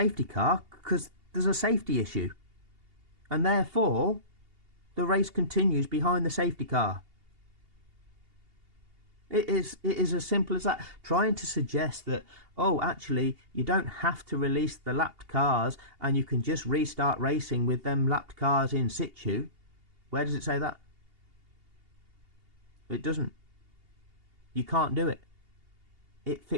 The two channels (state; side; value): late; left; 2.8 ms